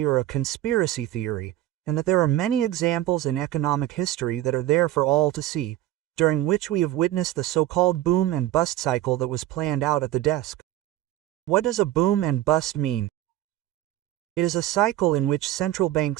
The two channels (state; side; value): quieter; left; 14.1 dB